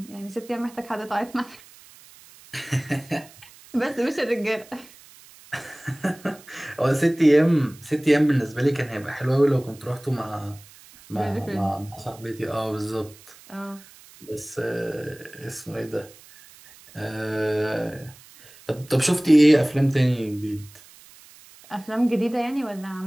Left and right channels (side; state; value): right; noise; hiss, 23 dB below the sound